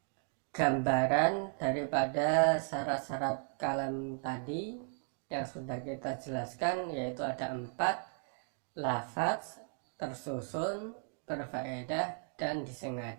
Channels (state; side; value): silent; left; 54 dB below the other